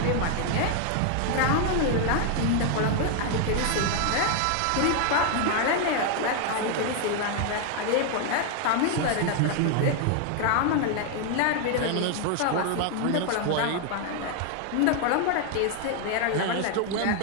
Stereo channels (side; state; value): both; different; correlation 0.00